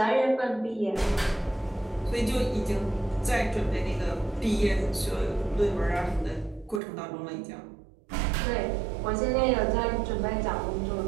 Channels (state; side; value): drops out; left; at 6.8 s